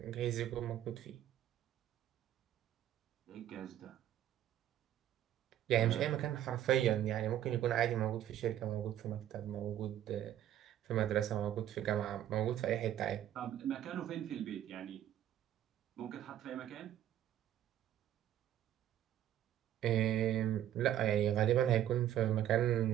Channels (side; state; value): left; quieter; 11.6 dB